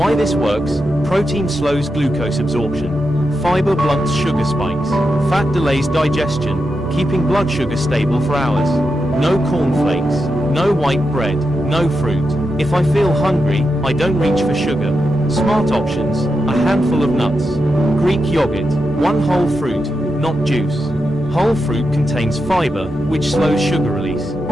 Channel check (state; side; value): normal; both; correlation 0.87